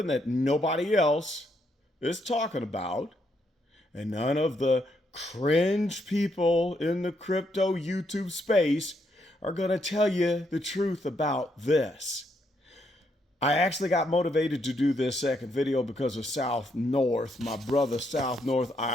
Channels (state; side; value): normal; both; correlation 0.76